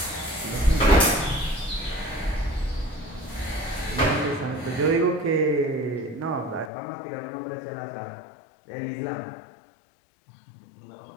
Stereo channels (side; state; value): right; drops out; at 6.7 s